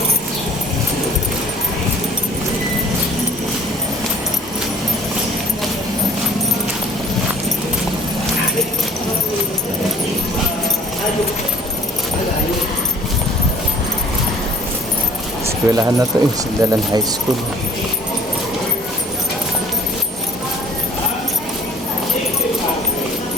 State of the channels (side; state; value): both; normal; correlation 0.50